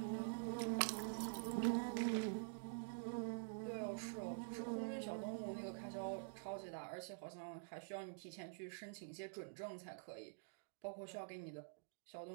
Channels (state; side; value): silent; left; digital silence